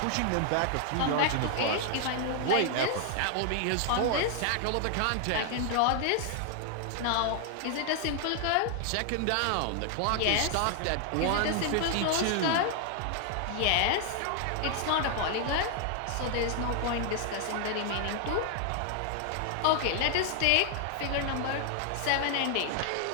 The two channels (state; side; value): different; both; correlation 0.00